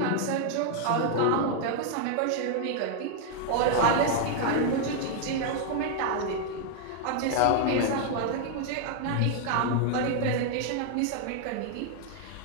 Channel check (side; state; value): both; different; correlation 0.00